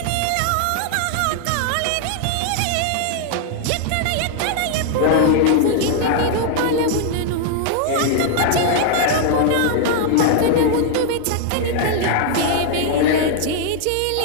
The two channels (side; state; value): both; different; correlation -0.01